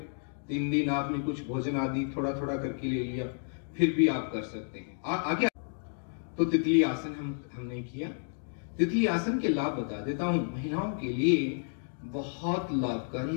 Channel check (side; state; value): right; silent; digital silence